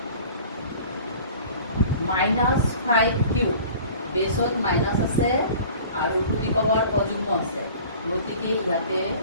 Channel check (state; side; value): inverted; both; correlation -0.45